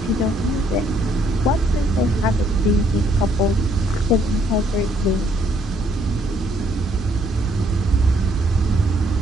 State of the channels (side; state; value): both; normal; correlation 0.68